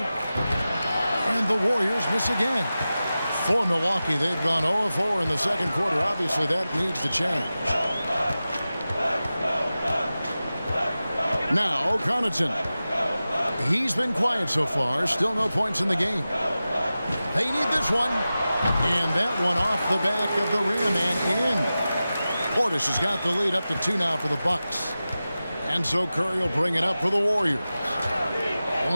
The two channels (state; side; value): inverted; both; correlation -0.95